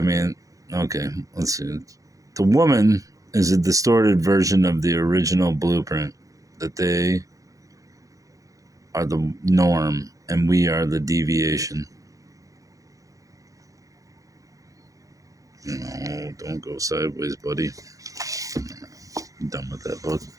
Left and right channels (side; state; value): left; late; 0.16 ms